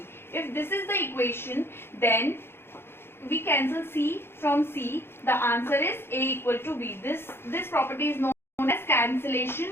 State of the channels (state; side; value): late; right; 0.11 ms